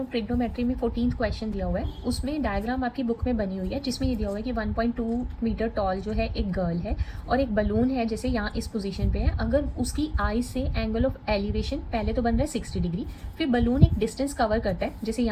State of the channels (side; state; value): both; identical; correlation 1.00